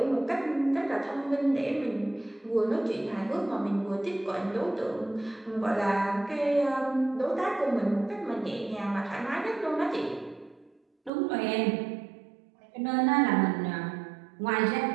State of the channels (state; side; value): drops out; left; at 11.1 s